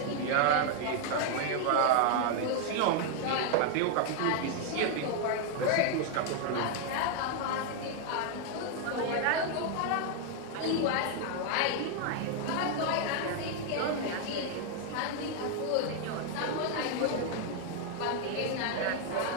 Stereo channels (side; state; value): both; different; correlation 0.00